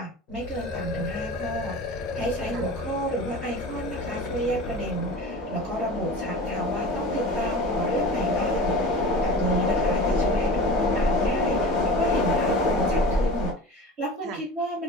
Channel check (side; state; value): both; normal; correlation 0.35